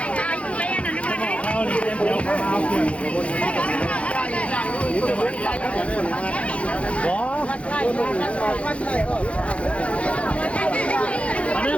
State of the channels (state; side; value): late; right; 0.062 ms